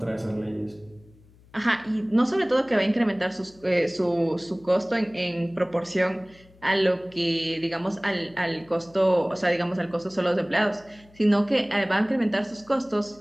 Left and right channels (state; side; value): noise; left; hum, 27 dB below the sound